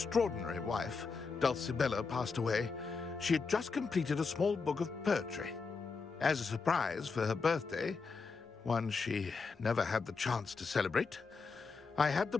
wife, Dulcibella, passed away, she had just completed a small book of poetry. As a surprise for her birthday, one she never had the chance to celebrate, I had the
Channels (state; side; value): quieter; right; 4.7 dB